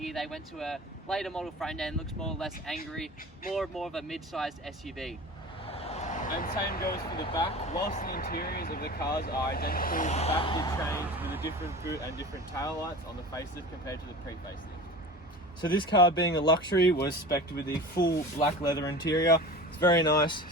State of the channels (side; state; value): both; normal; correlation 0.36